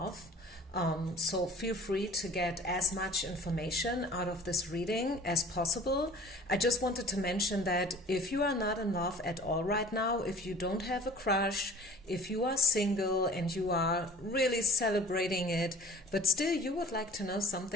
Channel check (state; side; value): normal; both; correlation 0.45